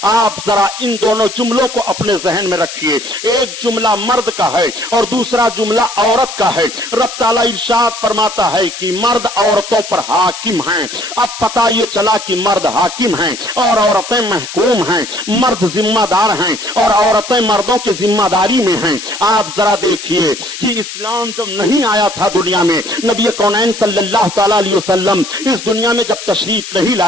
आप जरा इन दोनों जुमलों को अपने जहन में रखिए, एक जुमला मर्द का है और दूसरा जुमला औरत का है। रब ताला इरशाद फरमाता है कि मर्द औरतों पर हाकिम हैं। अब पता ये चला कि मर्द हाकिम हैं और औरतें महकूम हैं, मर्द जिम्मेदार हैं और औरतें मर्दों की जिम्मेदारी में हैं। आप जरा देखिए कि इस्लाम जब नहीं आया था दुनिया में, नबी कौनैन सल्लल्लाहु तआला अलैहि वसल्लम इस दुनिया में जब तशरीफ नहीं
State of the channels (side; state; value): left; noise; hiss, 10 dB below the sound